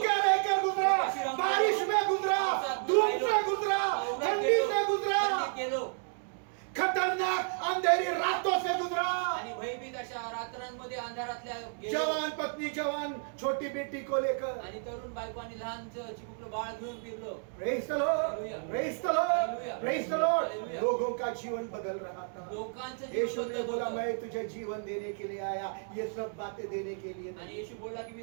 रहकर गुजरा, बारिश में गुजरा, धूप से गुजरा, ठंडी से गुजरा, गेलो खतरनाक अंधेरी रातों से गुजरा। आणि भयभीत अशा रात्रांमध्ये अंधारातल्या गेलो. जवान पत्नी, जवान छोटी बेटी को लेकर, आणि तरुण बायको आणि लहान चिमुकलं बाळ घेऊन फिरलो. Praise the Lord, Praise the Lord, Praise the Lord। लोगों का जीवन बदल रहा था। लोकांचं जीवन यीशु ने बदलत बोला होतं. मैं तुझे जीवन देने के लिए आया, ये सब बातें देने के लिए आणि नहीं। येशू बोलला की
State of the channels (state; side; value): silent; left; 56 dB below the other